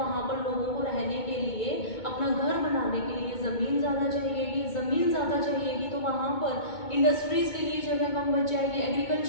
पर लोगों को रहने के लिए, अपना घर बनाने के लिए ज़मीन ज़्यादा चाहिएगी, ज़मीन ज़्यादा चाहिएगी तो वहाँ पर इंडस्ट्रीज़ के लिए जगह कम बच जाएगी,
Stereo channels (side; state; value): right; late; 2.2 ms